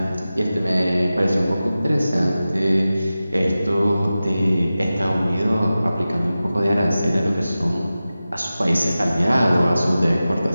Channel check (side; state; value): both; inverted; correlation -0.95